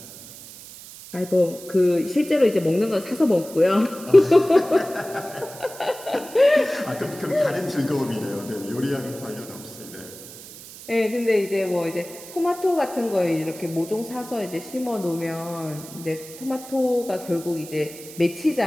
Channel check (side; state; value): right; noise; hiss, 16 dB below the sound